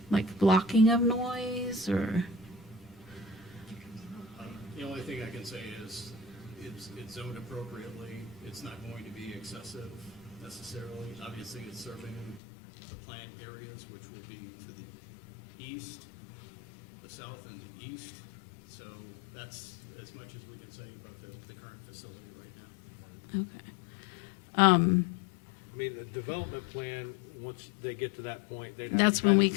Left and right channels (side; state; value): right; drops out; at 12.4 s